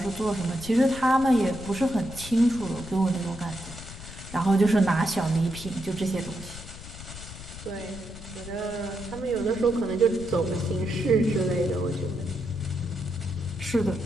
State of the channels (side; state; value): left; noise; rumble, 13 dB below the sound